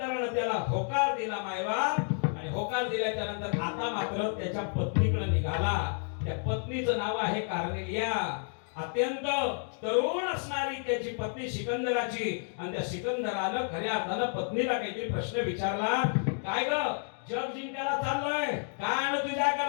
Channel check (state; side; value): silent; right; 57 dB below the other